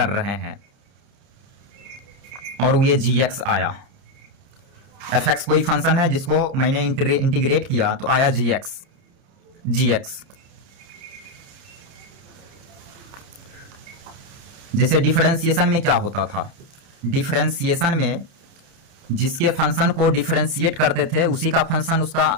रहे हैं और ये जी एक्स आया। एफ एक्स कोई फंक्शन है जिसको मैंने इंटीग्रेट किया तो आया जी एक्स। जैसे डिफरेंशिएशन में क्या होता था, डिफरेंशिएशन में जिसके फंक्शन को डिफरेंशिएट करते थे उसी का फंक्शन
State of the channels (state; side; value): late; left; 30 ms